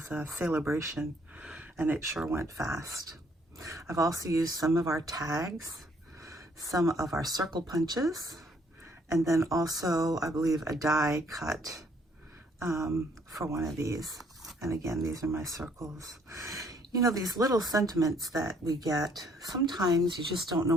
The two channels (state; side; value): normal; both; correlation 0.65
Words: a celebration and it sure went fast. I've also used some of our tags, some of our circle punches, and then also, I believe, a die cut for one of these. And again, these are my circles. You know, these little sentiments that we get, sometimes you just don't know